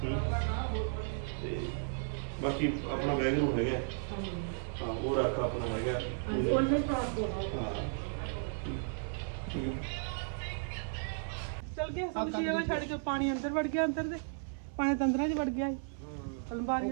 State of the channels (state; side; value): silent; left; 55 dB below the other